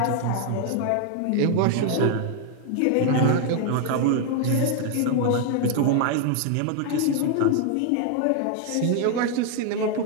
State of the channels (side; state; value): both; different; correlation 0.00